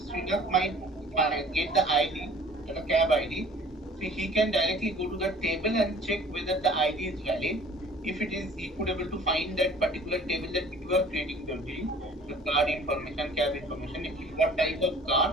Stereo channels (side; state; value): both; normal; correlation 0.50